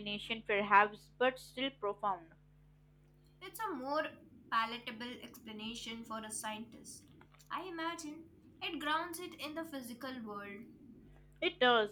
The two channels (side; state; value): both; identical; correlation 1.00